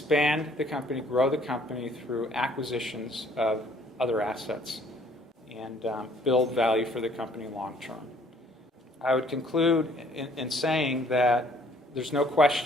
the company, grow the company through acquisitions of other assets and build value for the company long term. I would conclude in saying that there's no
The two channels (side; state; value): both; normal; correlation 0.60